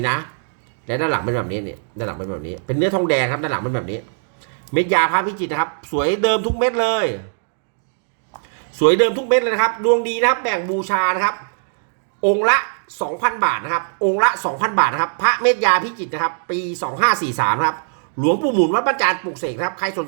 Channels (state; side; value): silent; left; digital silence